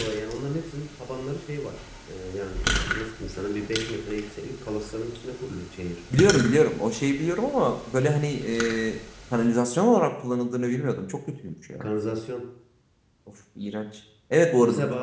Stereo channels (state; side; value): identical; both; correlation 1.00